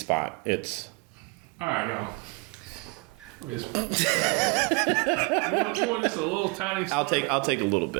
It's all right, y'all. Let me just, you want just a little tiny spot? I'll take a little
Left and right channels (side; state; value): left; quieter; 29.2 dB